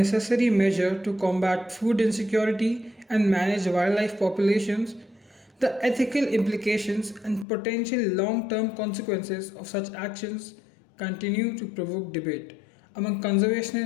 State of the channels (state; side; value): drops out; right; at 7.5 s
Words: measure to combat food insecurity and manage wildlife populations, the ethical implications and potential long term consequences of such actions continue to provoke debate among